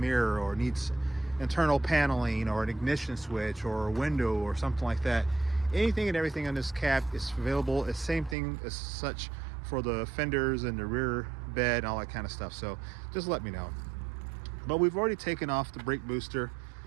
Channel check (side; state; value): left; drops out; at 8.3 s